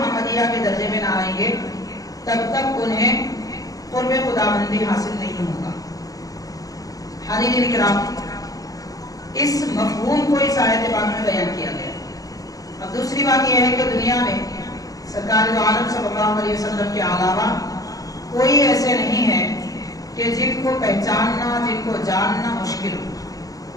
کے درجے میں نہ آئیں گے، تب تک انہیں قرب خداوندی حاصل نہیں ہوگا. حاضرین کرام، اس مفہوم کو اس آیت پاک میں بیان کیا گیا. اب دوسری بات یہ ہے کہ دنیا میں سرکار دو عالم صلی اللہ علیہ وسلم کے علاوہ کوئی ایسے نہیں ہے کہ جن کو پہچاننا، جن کو جاننا مشکل ہو.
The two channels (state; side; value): late; right; 0.17 ms